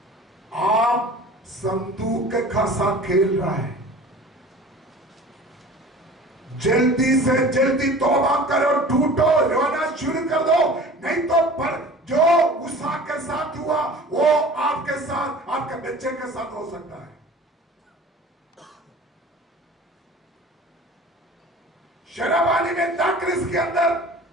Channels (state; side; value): normal; both; correlation 0.42